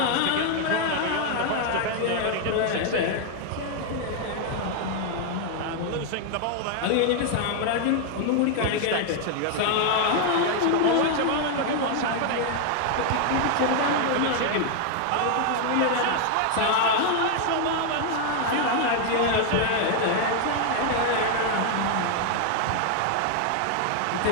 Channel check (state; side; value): different; both; correlation 0.00